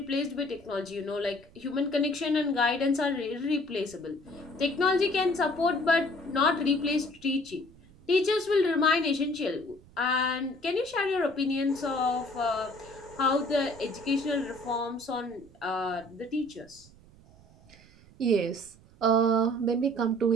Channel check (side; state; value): right; noise; rumble, 25 dB below the sound